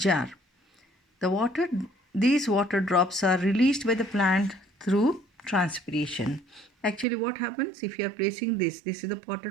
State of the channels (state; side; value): drops out; left; at 7.1 s